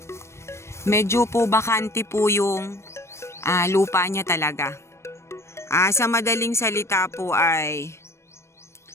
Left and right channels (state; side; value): late; right; 0.13 ms